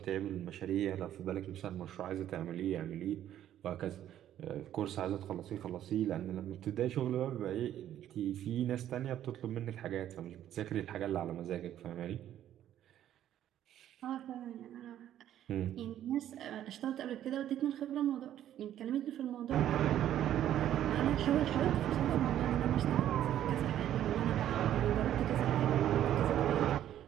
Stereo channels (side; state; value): left; quieter; 11.5 dB